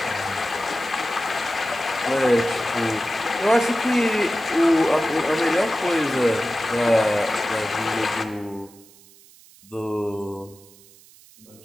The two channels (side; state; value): right; noise; hiss, 25 dB below the sound